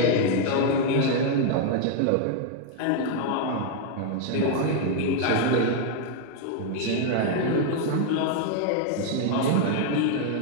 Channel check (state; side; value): different; both; correlation 0.00